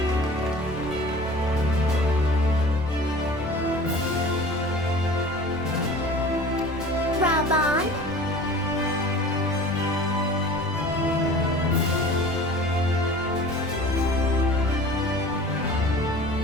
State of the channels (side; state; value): both; normal; correlation 0.42